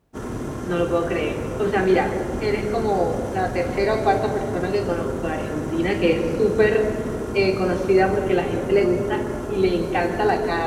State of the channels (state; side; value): identical; both; correlation 1.00